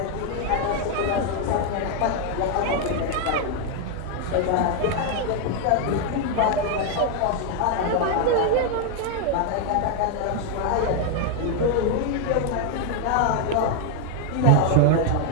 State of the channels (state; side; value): different; both; correlation 0.01